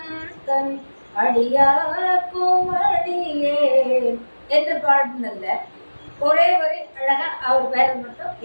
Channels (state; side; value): inverted; both; correlation -1.00